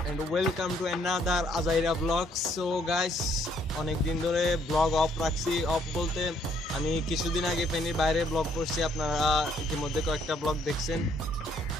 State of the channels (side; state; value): both; normal; correlation 0.67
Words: and welcome to another আজাইরা ব্লগ। সো গাইস, অনেক দিন ধরে ব্লগ অফ রাখছি। অফ বলতে আমি কিছুদিন আগে ফেনীর বাইরে ব্লগ করছি, আপনারা ইতিমধ্যে কয়েকটা ব্লগ দেখছেন।